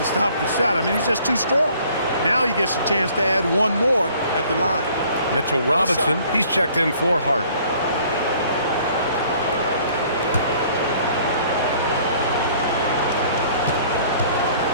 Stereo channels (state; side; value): inverted; both; correlation -0.56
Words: stop the shot. I mean, he's just too strong. Now he gets a chance to add one more at the line. Mitchell Robinson, he's checked in for Hart.